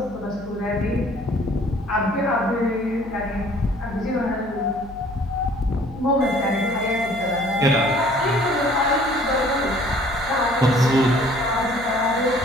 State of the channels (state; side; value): noise; left; hum, 18 dB below the sound